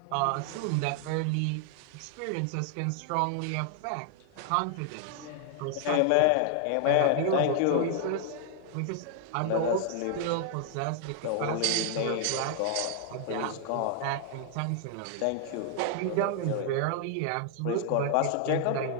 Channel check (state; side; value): different; both; correlation 0.00